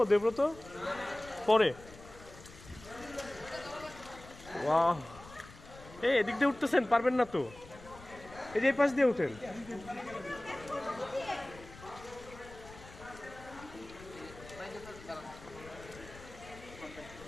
দেব্রত পরে? ওয়াও, এই এদিক দিয়ে উঠতেছেন, পারবেন না তো? এই যে এই পাশ দিয়ে উঠেন।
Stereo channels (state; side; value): noise; left; rumble, 18 dB below the sound